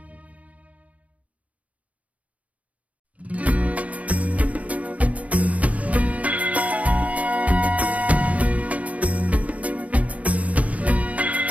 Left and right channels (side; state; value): left; late; 0.068 ms